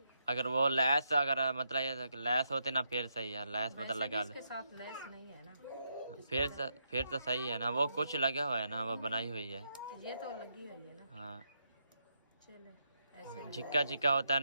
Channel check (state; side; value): inverted; both; correlation -0.81